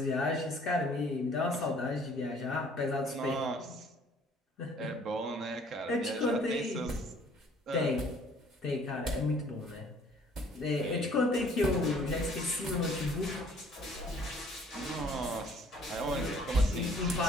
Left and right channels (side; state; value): both; normal; correlation 0.57